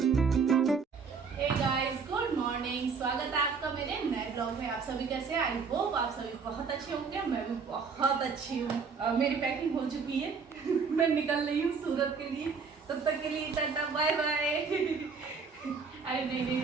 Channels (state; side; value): quieter; left; 5.4 dB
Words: गुड मॉर्निंग, स्वागत है आपका मेरे नए ब्लॉग में। आप सभी कैसे हैं? आई होप आप सभी बहुत अच्छे होंगे। मैं भी बहुत अच्छी हूँ। मेरी पैकिंग हो चुकी है। मैं निकल रही हूँ सूरत के लिए। तब तक के लिए टाटा बाय बाय। अरे नहीं,